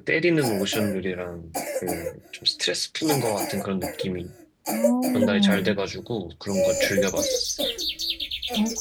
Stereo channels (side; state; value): both; identical; correlation 1.00